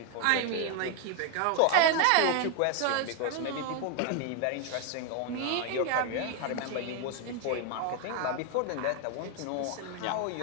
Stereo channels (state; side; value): different; both; correlation 0.01